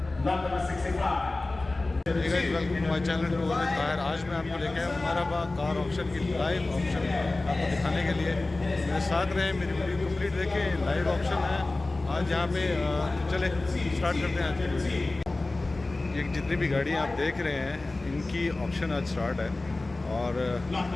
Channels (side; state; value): right; quieter; 3.1 dB